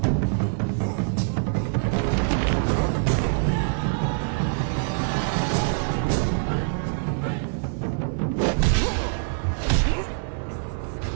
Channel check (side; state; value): left; silent; digital silence